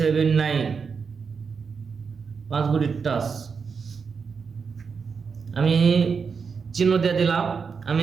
9। 5 গুটির টাচ আমি চিহ্ন দিয়ে দিলাম। আমি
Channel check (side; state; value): left; quieter; 5.7 dB